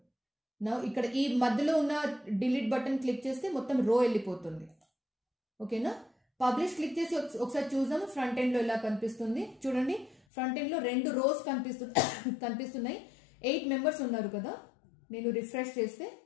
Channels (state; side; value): drops out; right; at 10.2 s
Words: నా ఇక్కడ ఈ మధ్యలో ఉన్న డిలీట్ బటన్ క్లిక్ చేస్తే మొత్తం రో వెళ్ళిపోతుంది. ఓకేనా? పబ్లిష్ క్లిక్ చేసి ఒకసారి చూద్దాము ఫ్రంట్ ఎండ్ లో ఎలా కనిపిస్తుంది. చూడండి, ఫ్రంట్ ఎండ్ లో 2 రోస్ కనిపిస్తున్నాయి. 8 మెంబర్స్ ఉన్నారు కదా. నేను రిఫ్రెష్ చేస్తే